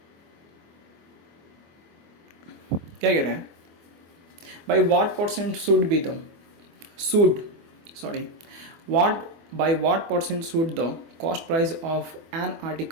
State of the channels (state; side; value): late; left; 24 ms